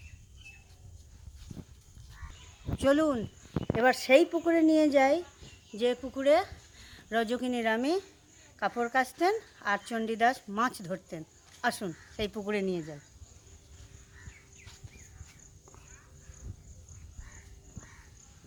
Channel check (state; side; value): identical; both; correlation 1.00